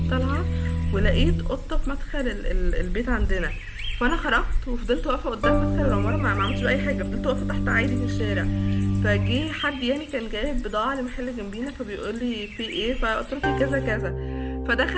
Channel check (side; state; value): both; identical; correlation 1.00